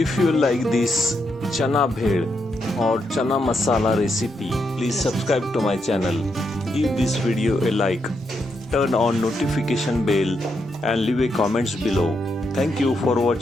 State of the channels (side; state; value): both; normal; correlation 0.81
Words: you like this chana bhel or chana masala recipe, please subscribe to my channel. Give this video a like, turn on notification bell and leave a comments below. Thank you for